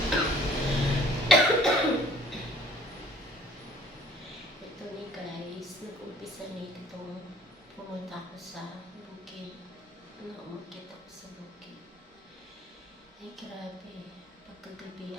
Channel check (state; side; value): normal; both; correlation 0.54